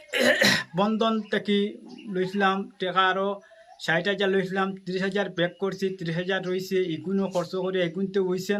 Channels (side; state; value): both; identical; correlation 1.00